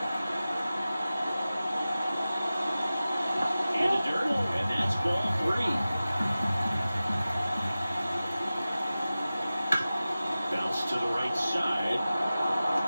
In the dirt, and that's ball 3. Bounce to the right side.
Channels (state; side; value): inverted; both; correlation -0.96